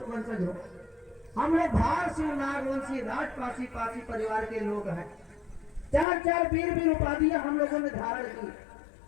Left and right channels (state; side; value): drops out; right; at 6.1 s